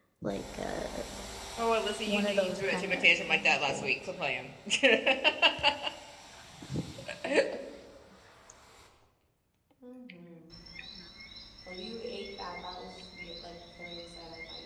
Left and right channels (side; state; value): both; identical; correlation 1.00